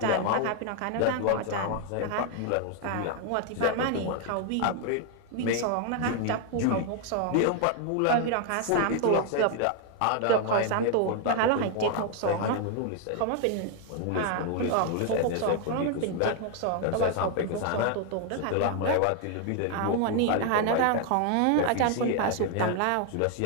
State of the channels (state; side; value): different; both; correlation 0.00